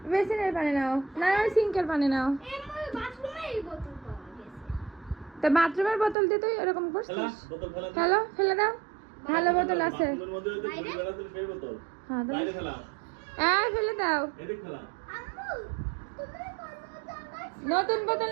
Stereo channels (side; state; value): left; drops out; at 6.2 s